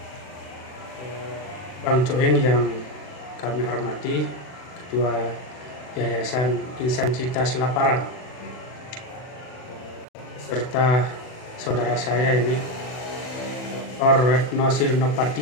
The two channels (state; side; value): late; right; 40 ms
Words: Bang Cuing yang kami hormati, Ketua Yayasan Insan Cita Selaparang, serta saudara saya ini Dr. Retno